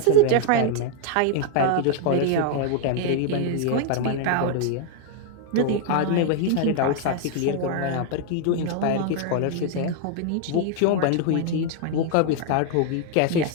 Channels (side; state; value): both; different; correlation 0.00